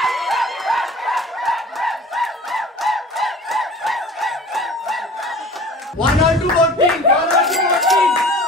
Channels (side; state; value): both; normal; correlation 0.43